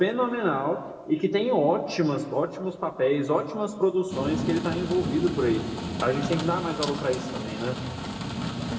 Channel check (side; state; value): both; identical; correlation 1.00